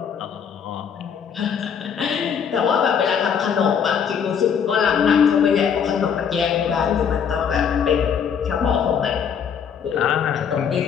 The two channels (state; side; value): quieter; right; 7.4 dB